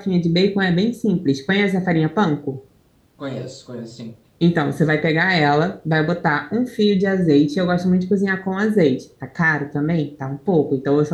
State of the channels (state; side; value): identical; both; correlation 1.00